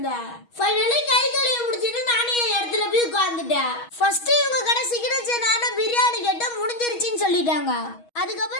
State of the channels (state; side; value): late; right; 6.3 ms